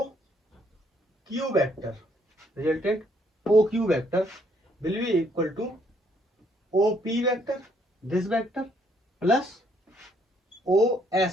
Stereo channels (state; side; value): normal; both; correlation 0.68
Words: Q vector, resultant O Q vector will be equal to O P vector, this vector plus O